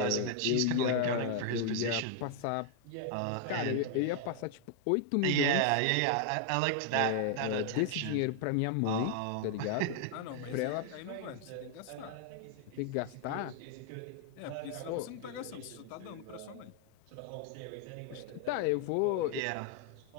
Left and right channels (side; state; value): both; different; correlation 0.00